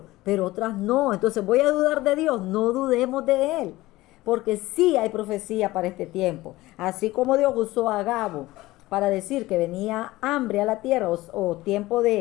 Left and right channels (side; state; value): right; quieter; 18.2 dB